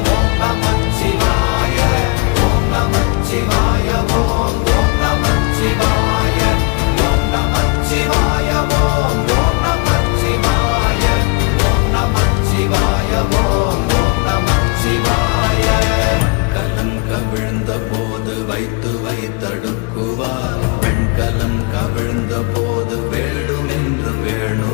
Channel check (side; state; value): right; quieter; 30.4 dB